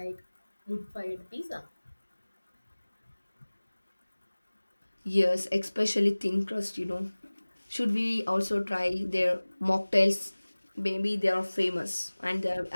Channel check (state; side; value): inverted; both; correlation -1.00